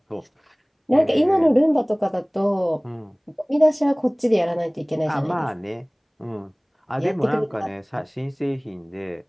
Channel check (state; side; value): identical; both; correlation 1.00